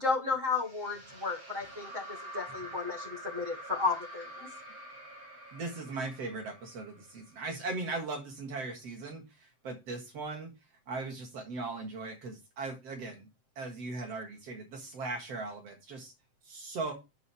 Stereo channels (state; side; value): late; left; 7.7 ms